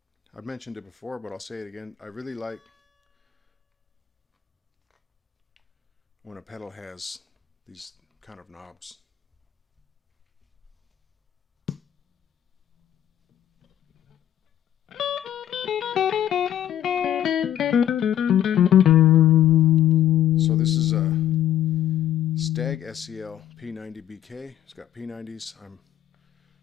I've mentioned it before, but I'll say it again. I really like when a pedal has these kind of knobs. So this is a Stagg SEL90-BK. It's got P90s. I'm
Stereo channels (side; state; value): right; quieter; 11.4 dB